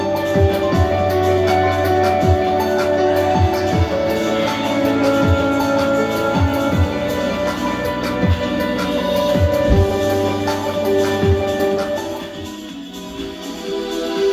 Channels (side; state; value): both; identical; correlation 1.00